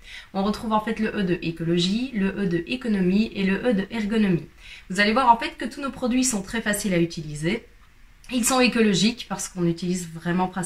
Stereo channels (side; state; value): both; identical; correlation 1.00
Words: On retrouve en fait le E de écologie, le E de économie et le E de ergonomie. Vous allez voir en fait que tous nos produits sont très faciles à utiliser. Ils sont écologiques parce qu'on utilise vraiment